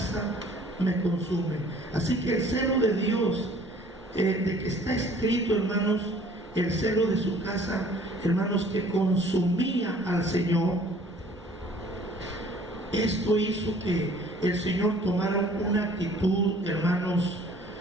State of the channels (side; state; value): both; normal; correlation 0.54